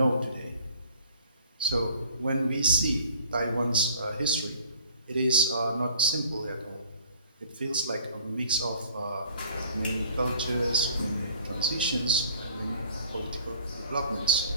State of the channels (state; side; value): inverted; both; correlation -0.51